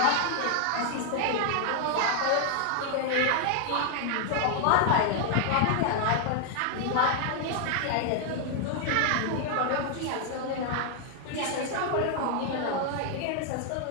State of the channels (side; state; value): both; different; correlation 0.00